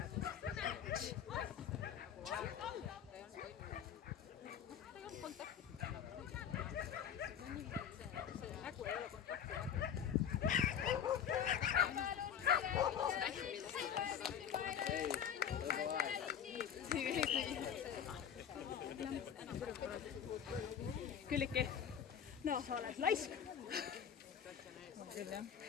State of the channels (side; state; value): right; quieter; 8.5 dB